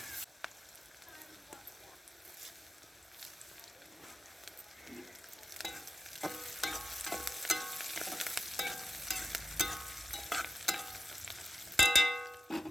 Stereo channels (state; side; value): normal; both; correlation 0.93